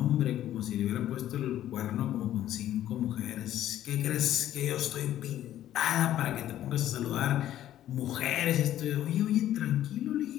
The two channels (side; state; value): right; quieter; 12.4 dB